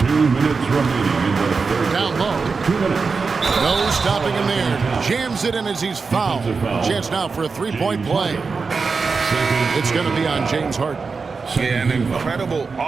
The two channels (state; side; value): quieter; left; 4.7 dB